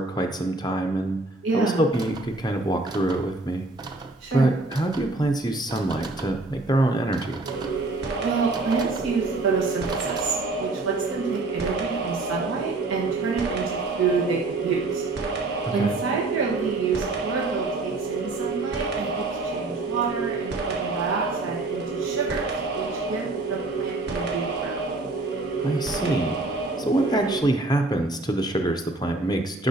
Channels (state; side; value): quieter; left; 3.1 dB